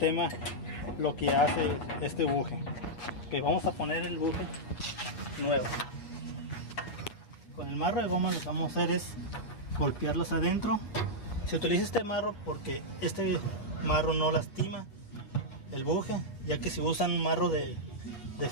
lo que hace este buje. Okay, vamos a poner el buje nuevo. Con el marro de goma lo que vamos a hacer es golpearlos adentro. Se utiliza este marro porque este marro no lastima el buje, ya que si usan un marro de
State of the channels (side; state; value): right; late; 7.8 ms